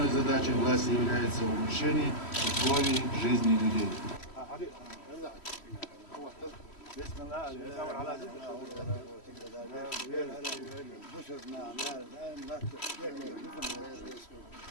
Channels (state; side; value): late; right; 3.1 ms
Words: задачей власти является улучшение условий жизни людей.